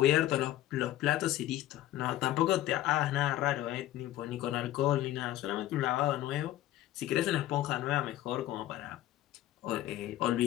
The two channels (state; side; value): quieter; right; 14.3 dB